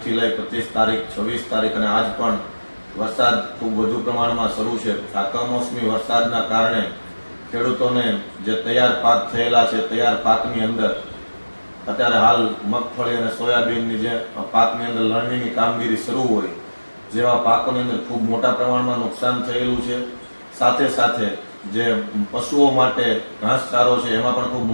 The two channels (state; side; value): inverted; both; correlation -1.00